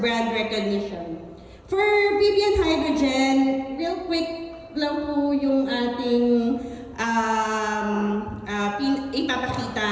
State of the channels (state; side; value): identical; both; correlation 1.00